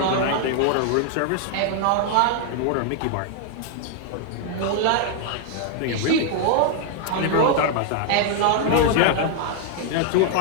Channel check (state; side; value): different; both; correlation 0.00